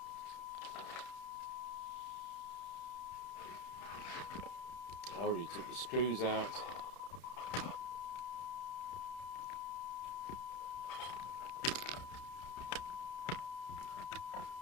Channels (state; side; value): late; right; 31 ms